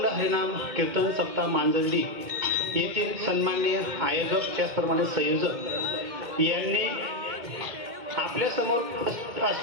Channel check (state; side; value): late; left; 2.1 ms